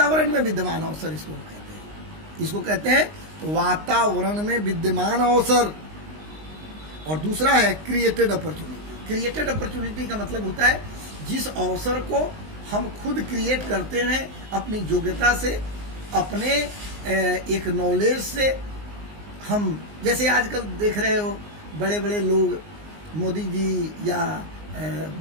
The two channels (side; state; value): left; late; 19 ms